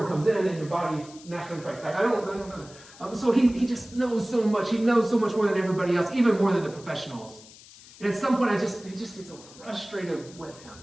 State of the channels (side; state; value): left; noise; hiss, 21 dB below the sound